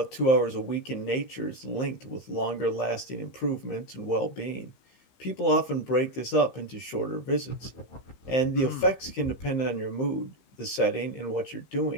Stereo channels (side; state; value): right; late; 15 ms